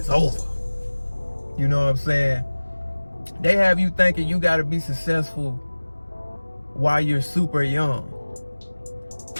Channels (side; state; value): both; inverted; correlation -1.00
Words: over. You know what I'm saying? They have you thinking you got to be successful while you're super young.